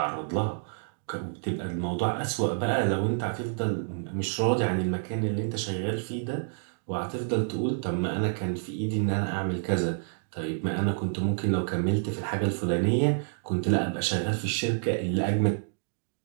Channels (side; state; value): left; silent; digital silence